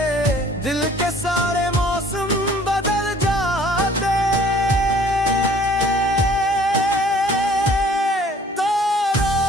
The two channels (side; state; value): both; normal; correlation 0.55